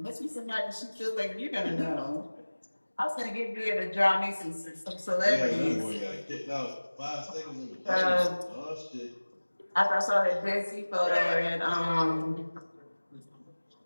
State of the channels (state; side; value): inverted; both; correlation -1.00